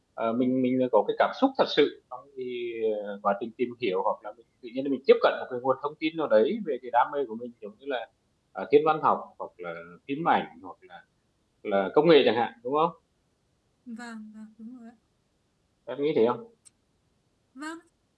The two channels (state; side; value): identical; both; correlation 1.00